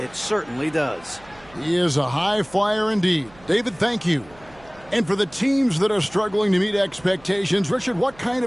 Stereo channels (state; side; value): noise; right; hum, 25 dB below the sound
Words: certainly does. He is a high flyer indeed. David, thank you. And for the teams that are struggling to meet expectations, Richard, what kind